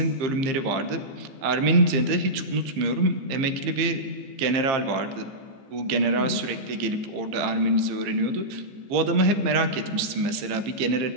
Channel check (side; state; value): left; late; 15 ms